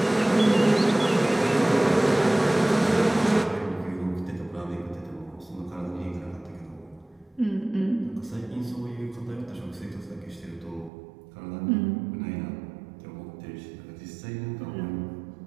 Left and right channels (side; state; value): left; drops out; at 10.9 s